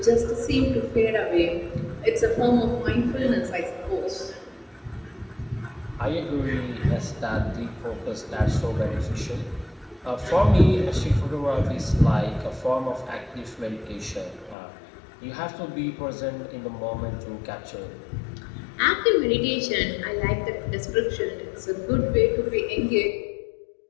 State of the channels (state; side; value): drops out; right; at 14.6 s